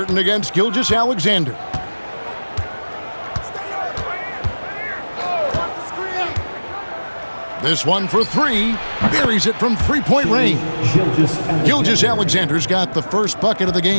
against Gilgeous-Alexander. This one for three. Buries it from three-point range. Gilgeous-Alexander's got the first bucket of the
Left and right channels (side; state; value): both; inverted; correlation -1.00